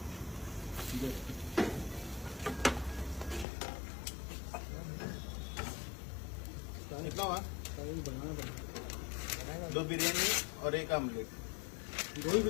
कितना हुआ? 2 बिरयानी और 1 आमलेट. 2 ही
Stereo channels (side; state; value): right; drops out; at 3.5 s